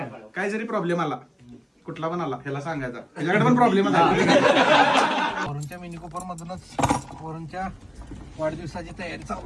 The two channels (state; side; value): identical; both; correlation 1.00